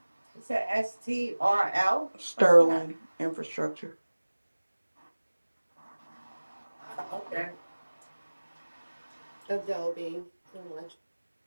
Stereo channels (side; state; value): both; inverted; correlation -1.00